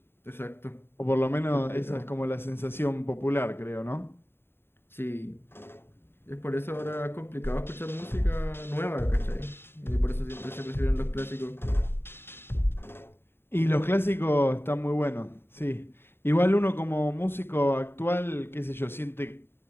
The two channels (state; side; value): late; right; 0.11 ms